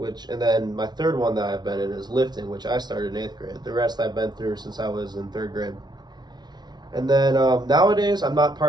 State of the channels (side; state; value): left; late; 0.20 ms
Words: and then my third one that I've been in is lifting, which I started in eighth grade. The rest I've been through since I was in third grade. And then nowadays, I'm not